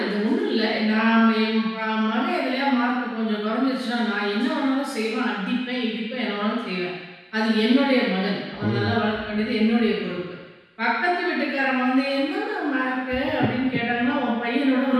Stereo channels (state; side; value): identical; both; correlation 1.00